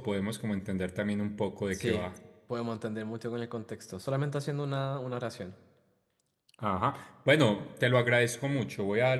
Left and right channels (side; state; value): both; identical; correlation 1.00